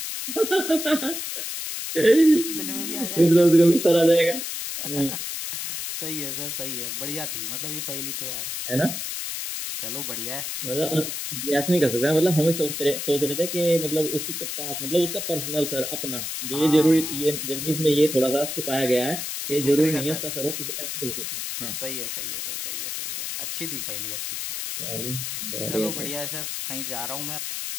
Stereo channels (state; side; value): noise; left; hiss, 4 dB below the sound